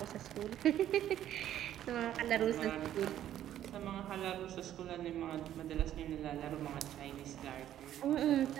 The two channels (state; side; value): quieter; left; 11.6 dB